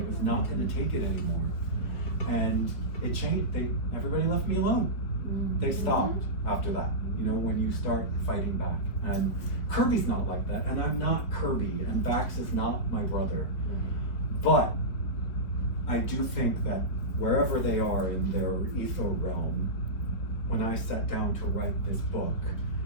was not gonna take it anymore. And it changed. Everybody left me alone. They stopped after that, when you start fighting back. And Kirby's not like that, and I'm not Kirby, and Bax is not my brother. But I do think that wherever they are in their ether realm, when I sat down to write this book,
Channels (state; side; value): late; right; 3.7 ms